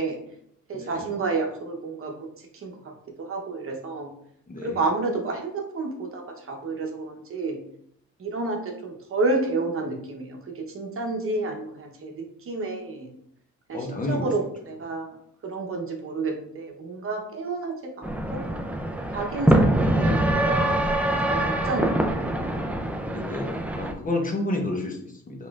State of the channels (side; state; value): both; normal; correlation 0.49